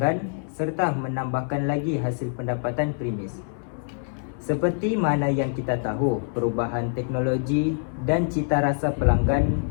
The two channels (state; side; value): silent; right; 62 dB below the other